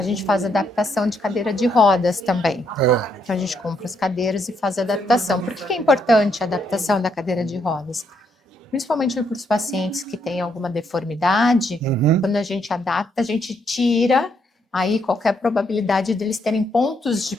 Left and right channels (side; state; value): both; normal; correlation 0.75